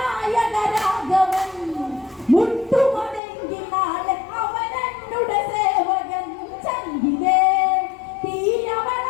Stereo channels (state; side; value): drops out; right; at 3.2 s